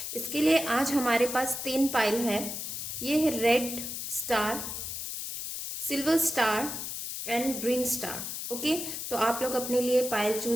इसके लिए आज हमारे पास 3 पाइल है। ये है red star, silver star and green star. Okay, तो आप लोग अपने लिए पाइल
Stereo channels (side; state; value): left; noise; hiss, 5 dB below the sound